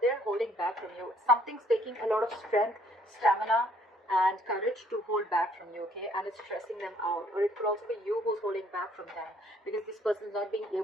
they're holding back from you. Something's taking a lot of strength, stamina, and courage to hold back from you, okay? And it's stressing them out. Or it could also be you who's holding back from them, because this person's not being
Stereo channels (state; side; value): normal; both; correlation 0.64